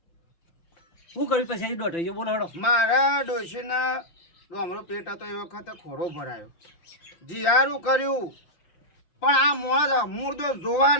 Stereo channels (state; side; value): late; right; 5.8 ms